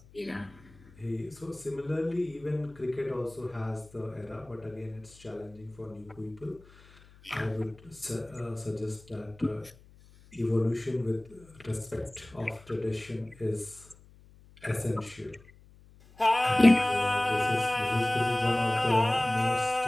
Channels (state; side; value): noise; left; hum, 24 dB below the sound